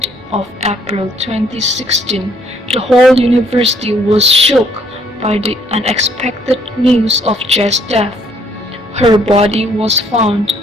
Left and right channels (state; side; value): normal; both; correlation 0.65